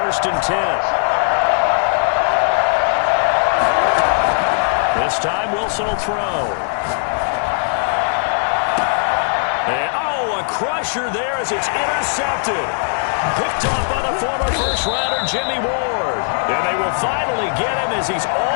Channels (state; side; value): silent; right; digital silence